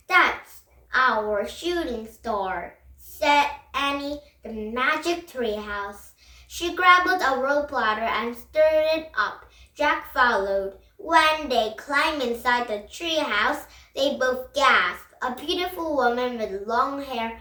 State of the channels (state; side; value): identical; both; correlation 1.00